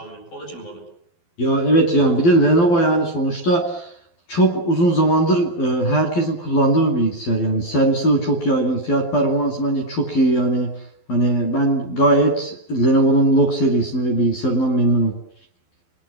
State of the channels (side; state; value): right; late; 12 ms